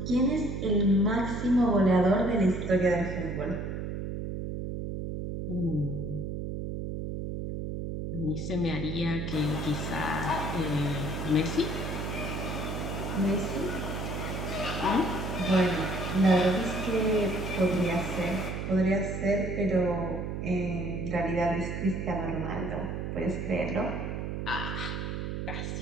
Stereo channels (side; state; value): right; noise; hum, 4 dB below the sound